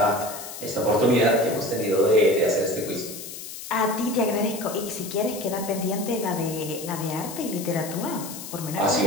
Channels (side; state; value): left; noise; hiss, 11 dB below the sound